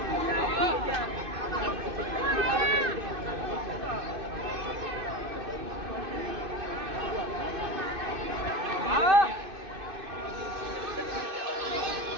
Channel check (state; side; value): late; left; 2.6 ms